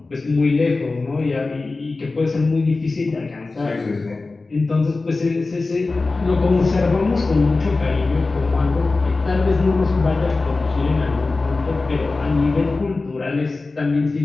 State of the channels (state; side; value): quieter; right; 3.6 dB